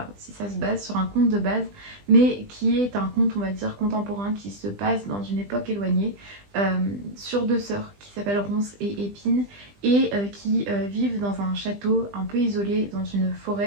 si ça se base sur un conte de base, mais qui est un conte on va dire contemporain qui se passe dans une époque éloignée sur deux sœurs qui s'appellent Ronces et Épines et qui vivent dans un château un peu isolé dans une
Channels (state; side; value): late; left; 20 ms